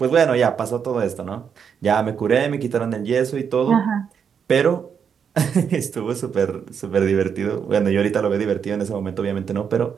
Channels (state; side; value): quieter; left; 7.1 dB